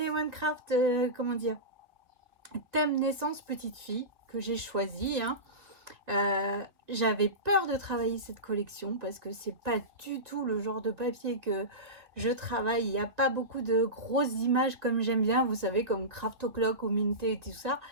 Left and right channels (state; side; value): late; left; 2.0 ms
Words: comment dire, thème naissance petite fille, que j'ai choisi, hein. J'avais peur de travailler cette collection parce que c'est pas du tout le genre de papier que je travaille. Il n'y a pas beaucoup de grosses images comme j'aime bien, vous savez, comme Craft O'Clock ou Minté et tout ça.